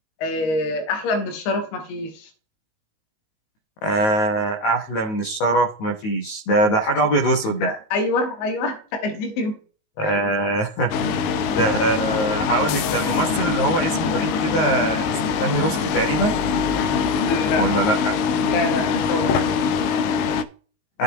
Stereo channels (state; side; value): late; right; 19 ms